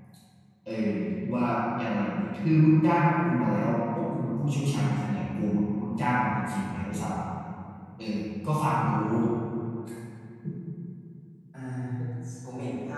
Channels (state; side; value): identical; both; correlation 1.00